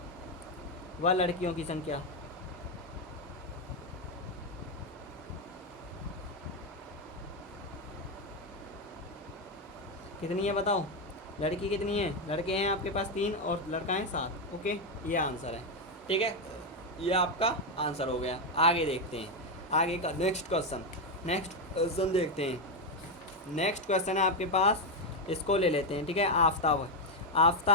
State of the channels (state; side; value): normal; both; correlation 0.05